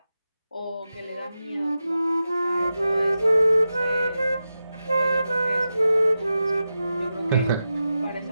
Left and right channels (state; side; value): inverted; both; correlation -0.91